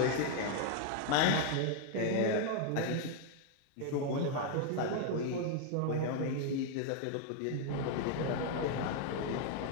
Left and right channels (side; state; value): both; different; correlation 0.01